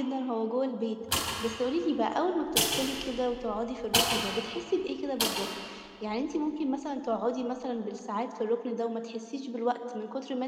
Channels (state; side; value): identical; both; correlation 1.00